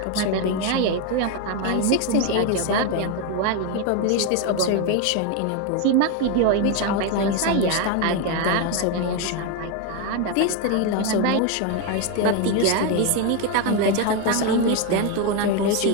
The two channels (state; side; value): different; both; correlation 0.02